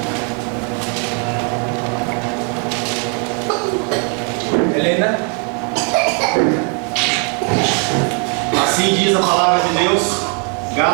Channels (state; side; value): quieter; left; 38.5 dB